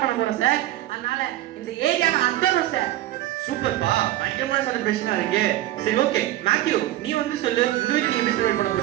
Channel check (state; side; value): quieter; left; 14.8 dB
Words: பண்ண போறோம் சார். அதனால இந்த ஏரியாவை அந்தரும் சார். சூப்பர்ப்பா, பயங்கரமான செலிப்ரேஷனா இருக்கு. சரி ஓகே மேத்யூ நீ வந்து சொல்லு உங்க வீட்ல நீங்க எப்படி செலிப்ரேட் பண்ண